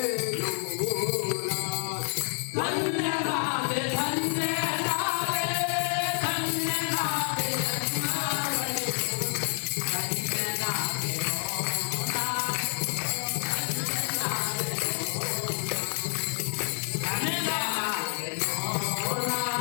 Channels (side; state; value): right; silent; digital silence